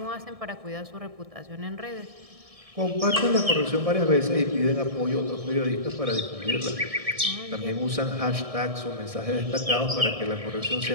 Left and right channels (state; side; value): late; left; 1.6 ms